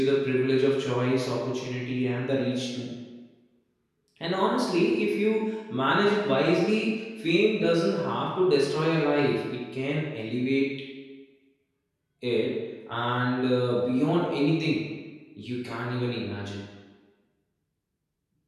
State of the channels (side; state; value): both; identical; correlation 1.00